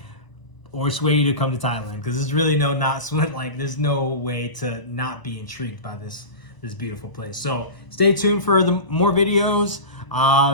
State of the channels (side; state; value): right; late; 1.0 ms